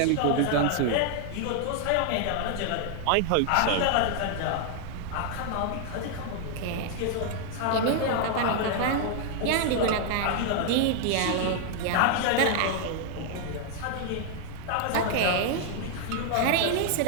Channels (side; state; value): both; different; correlation 0.00